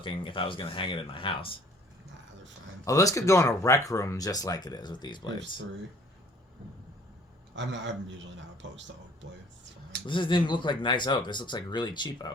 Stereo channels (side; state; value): both; normal; correlation 0.54